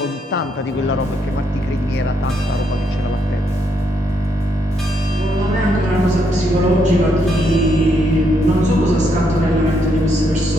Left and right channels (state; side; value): normal; both; correlation 0.76